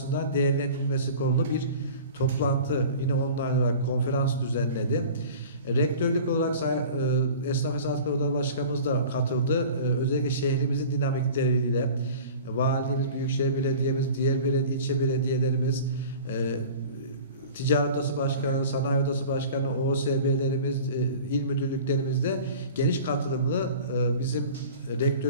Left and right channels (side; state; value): both; inverted; correlation -0.40